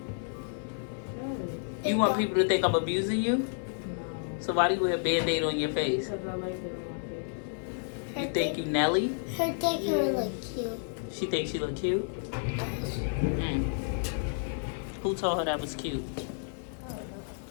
You want people to think I'm abusing you? So why do you wear a Band-Aid on your face? Because I like it on my face. You think you Nelly? Her think her look cute. She thinks she look cute? Who told her that was cute?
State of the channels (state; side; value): silent; right; digital silence